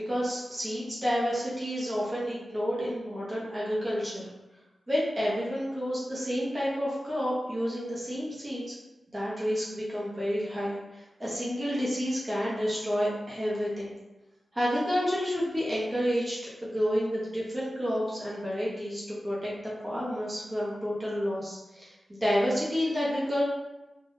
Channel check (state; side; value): normal; both; correlation 0.94